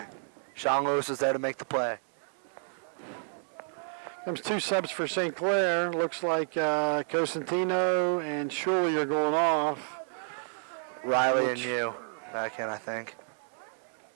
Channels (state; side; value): silent; left; digital silence